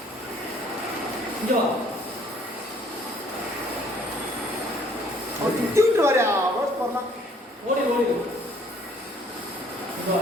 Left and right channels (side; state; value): both; normal; correlation 0.60